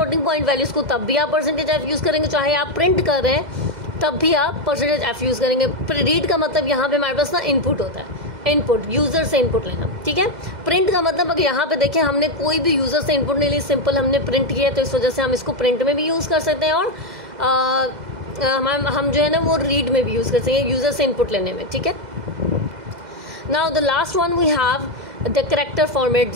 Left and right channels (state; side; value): late; left; 2.0 ms